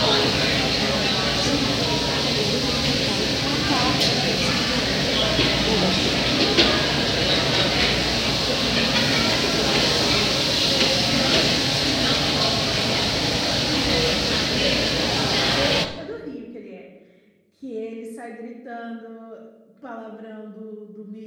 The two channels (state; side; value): identical; both; correlation 1.00